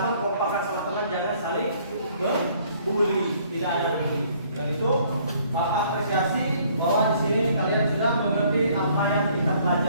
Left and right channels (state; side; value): inverted; both; correlation -0.61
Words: kompakan sama teman, jangan saling membuli, tidak ada bully. Dan itu Bapak apresiasi bahwa di sini kalian sudah mengerti apa yang kita